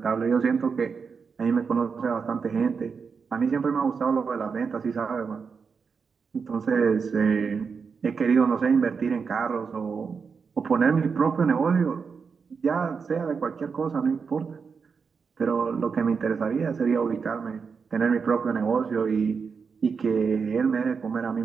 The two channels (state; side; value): quieter; left; 5.6 dB